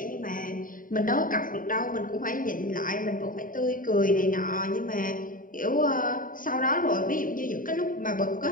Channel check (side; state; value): right; late; 0.40 ms